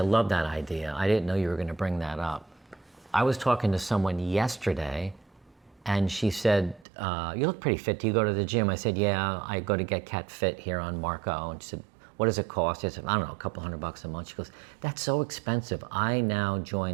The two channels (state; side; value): drops out; left; at 6.9 s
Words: that idea. I didn't know you were going to bring that up. I was talking to someone yesterday, and she said, you look pretty fit. Do you go to the gym? I said, yeah, I go to Get Cat Fit here on Marco. And she said, what does it cost? I said, I don't know, a couple $100 a month. She goes, that's so expensive. I now